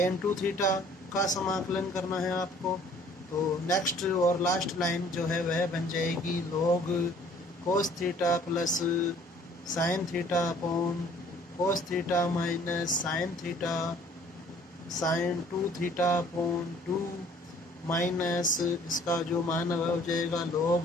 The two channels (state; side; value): normal; both; correlation 0.55